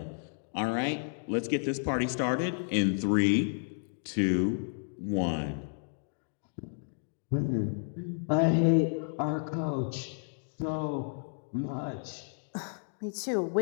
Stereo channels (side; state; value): right; silent; digital silence